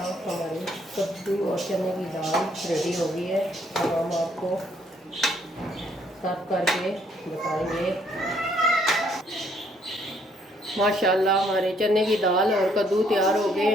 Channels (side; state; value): both; normal; correlation 0.67